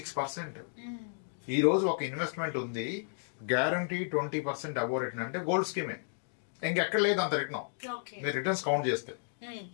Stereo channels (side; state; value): right; silent; digital silence